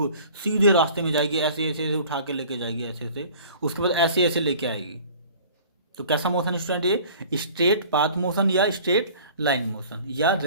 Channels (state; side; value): inverted; both; correlation -0.47